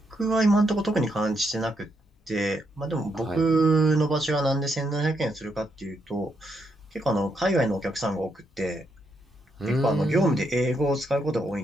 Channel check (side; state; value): both; normal; correlation 0.79